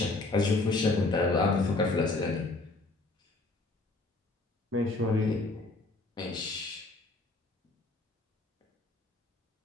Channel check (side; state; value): right; quieter; 3.2 dB